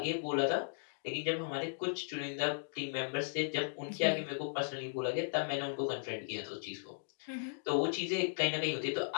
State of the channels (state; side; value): silent; right; digital silence